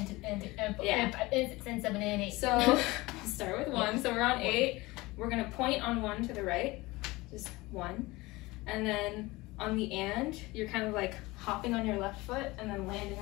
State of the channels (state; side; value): quieter; right; 21.3 dB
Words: and 7 and 8. So we'll start with 1. So we're on 8. We're gonna point on 1 to the right, just 1, and then on the and, you're kind of like hopping on your left foot and then landing